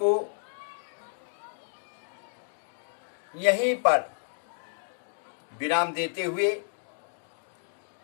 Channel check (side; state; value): right; silent; digital silence